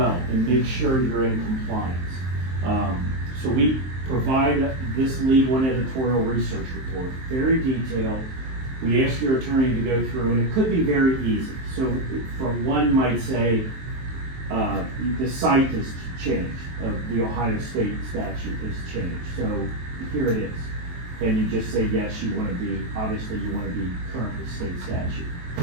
and make sure you're in compliance. So we provide this legal and editorial research report, very detailed. We ask your attorney to go through, and it could be very easy. So for one might say, the site has changed, the Ohio state statute has changed. So here it is. And you just say, yes, you want to be, obviously you want to be current with state statute.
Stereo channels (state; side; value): late; left; 23 ms